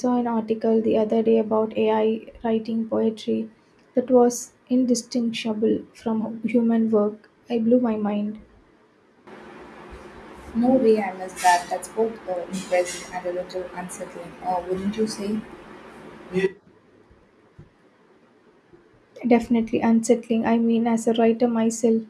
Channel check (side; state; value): both; identical; correlation 1.00